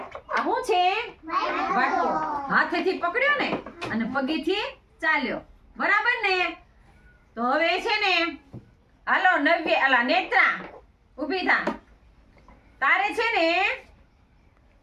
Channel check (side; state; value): both; identical; correlation 1.00